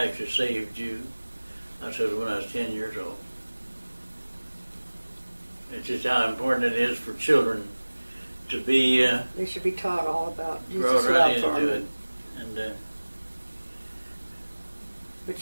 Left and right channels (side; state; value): both; inverted; correlation -1.00